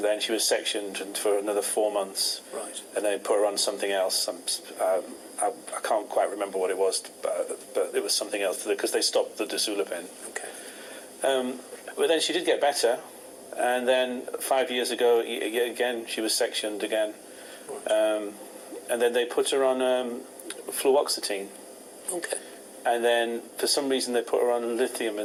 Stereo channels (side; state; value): both; identical; correlation 1.00